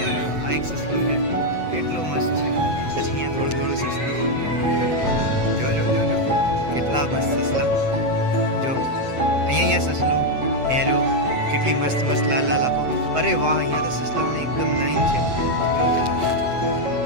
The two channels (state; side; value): late; left; 7.8 ms